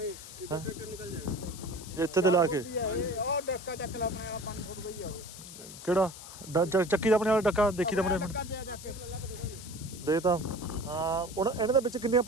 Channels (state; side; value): noise; left; hiss, 14 dB below the sound